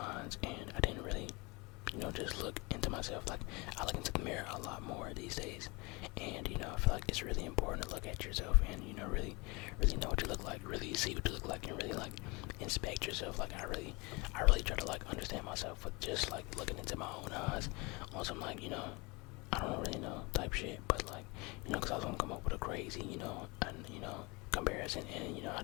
and I didn't really, just look into myself. Like, I look into the mirror a lot more these days, and, I feel like it's really important to look at yourself and, really know what you look like, really see what you look like, and really, like, inspect yourself. Like, I really try to, like, understand myself with just, like, looking into my own eyes on some, like, I don't really know type shit, but, like, because I was gonna come up with a crazy, comparison, and, I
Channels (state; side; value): quieter; right; 26.5 dB